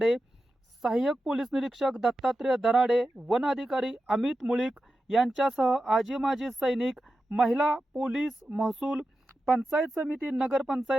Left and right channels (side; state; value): both; normal; correlation 0.91